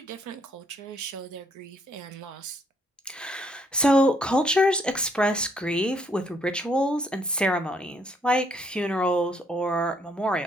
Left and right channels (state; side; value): normal; both; correlation 0.69